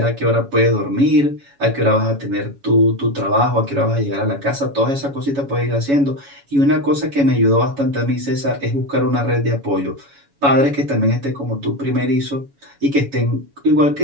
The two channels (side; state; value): left; late; 7.1 ms